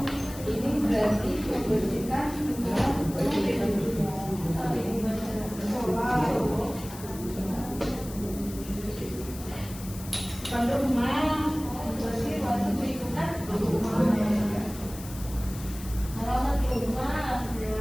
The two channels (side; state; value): left; noise; hiss, 15 dB below the sound